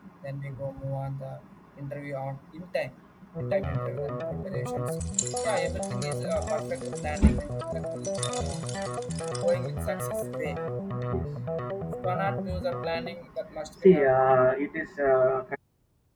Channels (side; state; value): both; identical; correlation 1.00